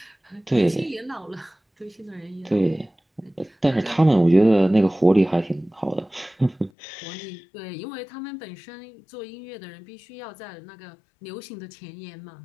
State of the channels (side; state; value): right; drops out; at 6.7 s